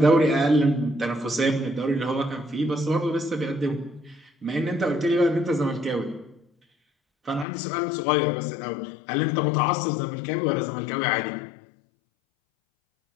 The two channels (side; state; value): right; drops out; at 7.5 s